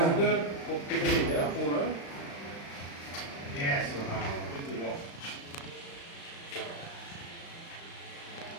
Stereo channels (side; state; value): right; late; 35 ms